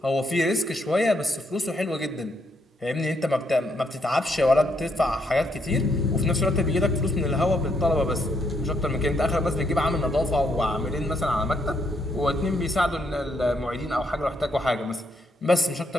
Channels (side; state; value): both; normal; correlation 0.75